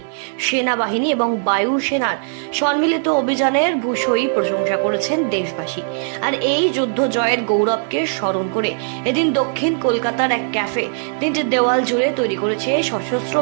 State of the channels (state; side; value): silent; left; digital silence